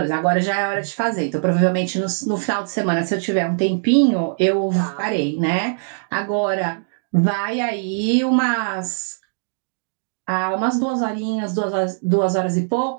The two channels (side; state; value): left; silent; digital silence